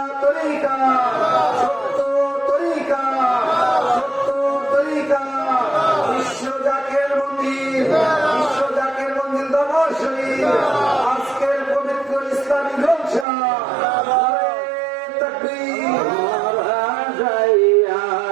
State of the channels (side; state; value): left; drops out; at 13.2 s